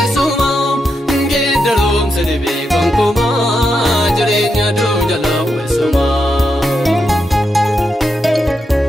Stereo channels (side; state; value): both; normal; correlation 0.84